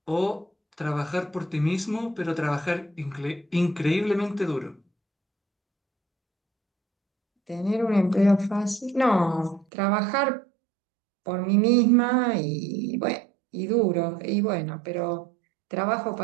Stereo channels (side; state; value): left; drops out; at 9.7 s